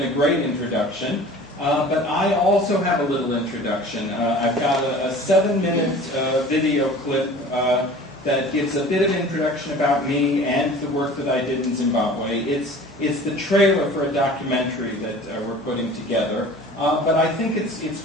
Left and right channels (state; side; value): normal; both; correlation 0.43